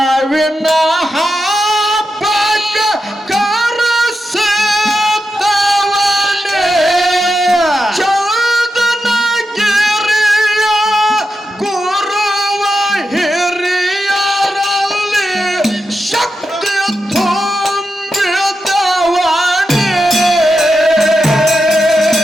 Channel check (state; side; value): normal; both; correlation 0.88